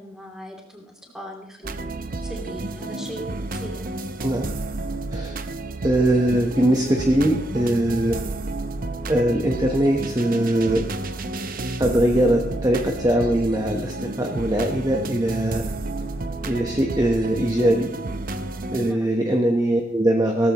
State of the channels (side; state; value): both; normal; correlation 0.79